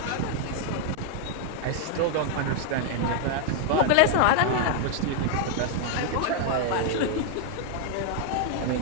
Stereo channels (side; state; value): both; different; correlation 0.00